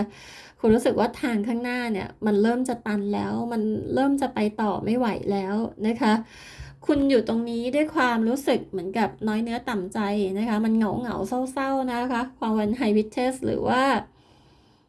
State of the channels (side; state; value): both; identical; correlation 1.00